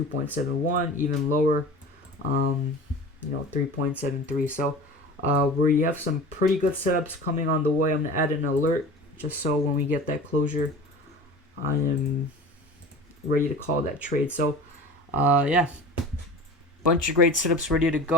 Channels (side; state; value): both; normal; correlation 0.37